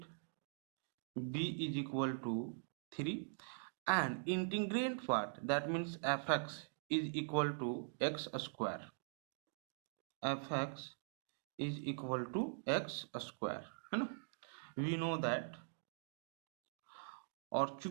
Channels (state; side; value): silent; left; digital silence